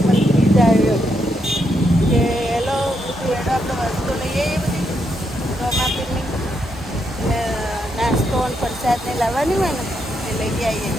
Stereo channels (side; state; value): both; normal; correlation 0.80